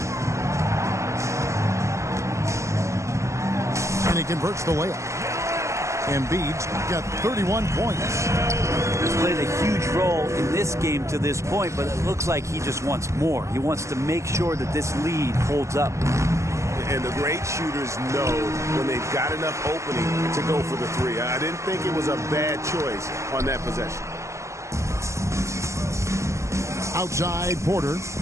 And he converts the layup. Embiid's got 31 points. He's played a huge role in this game to this point, but it looks like he just wants more. He wants to make sure that this lead holds up. And the great shooters know when they've got enough opening to go for the 3. I didn't think it was a bad choice on that possession. Outside Porter.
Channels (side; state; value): left; late; 0.14 ms